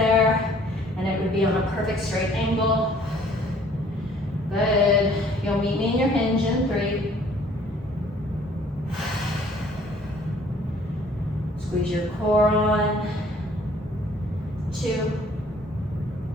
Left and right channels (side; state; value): both; normal; correlation 0.57